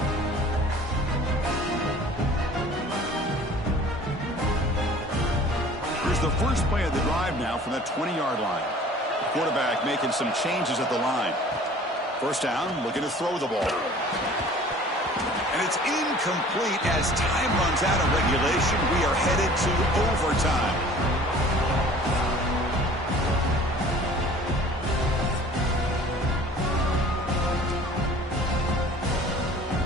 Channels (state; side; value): normal; both; correlation 0.48